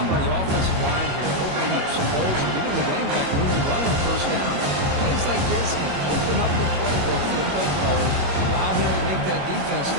by the offensive line here, opening up some holes and giving the running back room to run on first down. Plays like this can open up the playbook for the play caller, allow him to make that defense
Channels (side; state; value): left; late; 21 ms